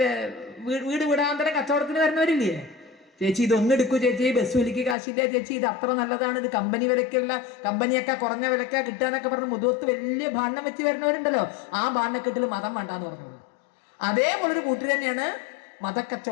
വീട് വിടാന്തരം കച്ചവടത്തിന് വരുന്നവരില്ലേ? ചേച്ചി ഇതൊന്നും എടുക്കൂ ചേച്ചി, ബസ് വിലക്ക് കാശില്ല ചേച്ചി, ഇത് അത്ര നല്ലതാണ്, ഇത് കമ്പനി വിലക്കുള്ള, കമ്പനിയൊക്കെ കുറഞ്ഞ വിലക്ക കിട്ടാന്നൊക്കെ പറഞ്ഞ് മുതുവത്ത് വലിയ ബാണ്ണം വെച്ച് വരുന്നവരുണ്ടല്ലോ. ആ ബാണ്ണക്കെട്ടിൽ മതം വേണ്ടാന്ന് പറഞ്ഞോളൂ. അതേപോലൊരു കൂട്ടർ തന്നെയാണ്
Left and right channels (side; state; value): right; drops out; at 5.0 s